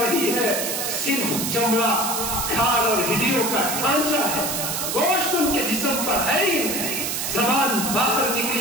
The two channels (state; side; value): noise; right; hiss, 2 dB below the sound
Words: رہی ہے، صرف چمڑا، کھال اور ہڈیوں کا ڈھانچہ ہے، گوشت ان کے جسم پر ہے ہی نہیں، زبان باہر